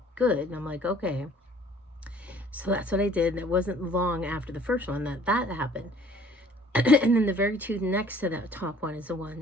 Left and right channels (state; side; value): normal; both; correlation 0.54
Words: good." And I'm like, "Okay." So that's what I did, and it wasn't long after the first one that happened. And then the very tooth next to that top one is the